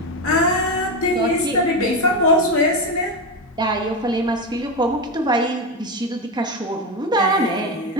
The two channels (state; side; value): normal; both; correlation 0.14